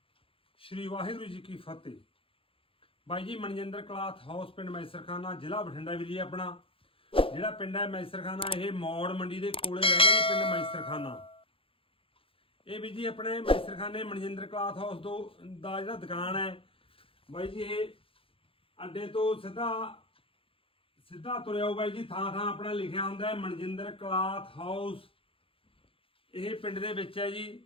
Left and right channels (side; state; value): right; late; 0.26 ms